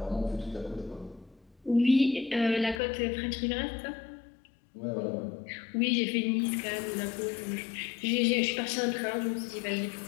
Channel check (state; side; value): drops out; right; at 2.8 s